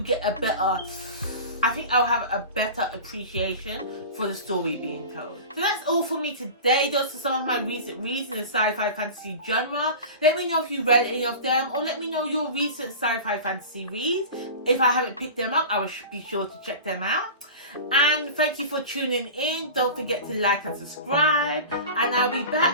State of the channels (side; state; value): both; inverted; correlation -0.33